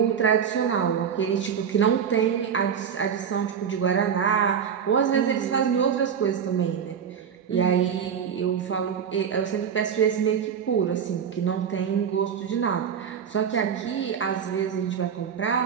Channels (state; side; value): quieter; left; 7.6 dB